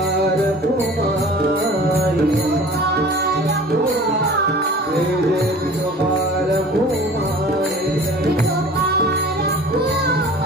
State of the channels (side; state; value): both; normal; correlation 0.44